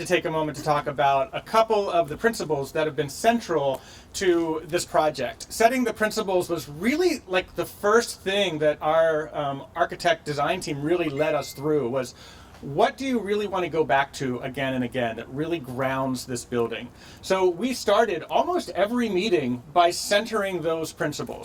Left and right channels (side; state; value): both; identical; correlation 1.00